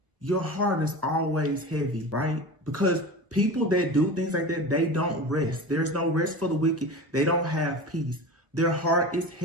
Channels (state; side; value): late; left; 1.0 ms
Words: Your heart is always heavy, right? Because people that do things like that, they don't rest. There's no rest for the wicked. They don't have peace. Their heart is